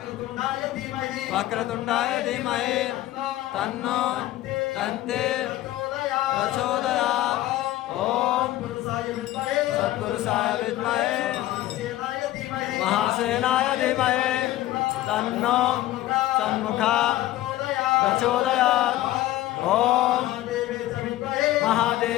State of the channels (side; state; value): right; quieter; 15.3 dB